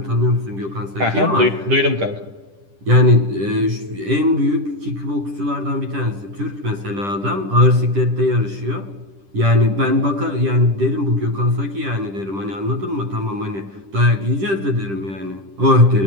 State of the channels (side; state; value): left; late; 10 ms